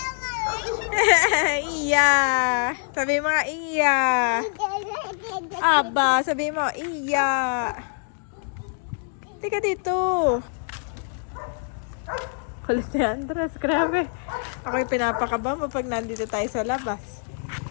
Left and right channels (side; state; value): right; silent; 56 dB below the other